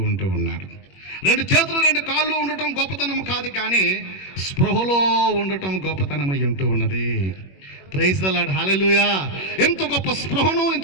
ఉన్నాడు. 2 చేతులు 2 కాళ్ళు ఉండటం గొప్పతనం కాదు, కానీ స్పృహలో ఉండటం గొప్పతనమై ఉన్నది. ప్రైజ్ ది లార్డ్, హల్లెలూయా. ఎంత గొప్ప స్పృహను,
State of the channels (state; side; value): late; right; 21 ms